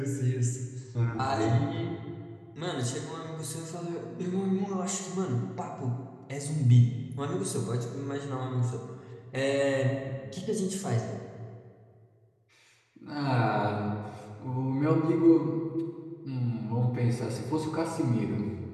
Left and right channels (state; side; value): identical; both; correlation 1.00